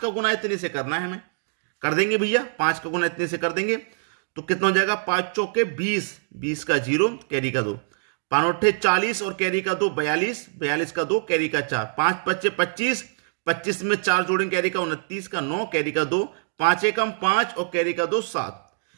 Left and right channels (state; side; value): silent; left; digital silence